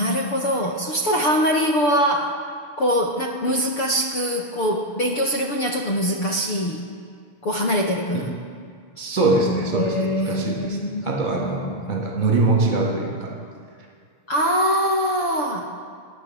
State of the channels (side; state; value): right; late; 6.8 ms